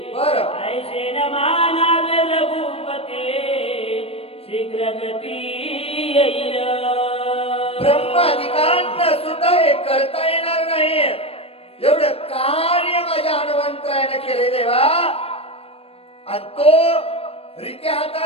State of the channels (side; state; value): right; late; 0.28 ms